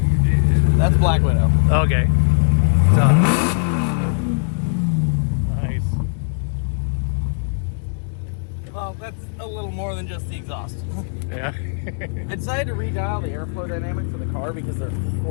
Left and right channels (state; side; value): silent; right; digital silence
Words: That's Black Widow. Okay. Nice. Well, that's a little more than just the exhaust. Yeah. I decided to redial the airflow dynamics of the car because they're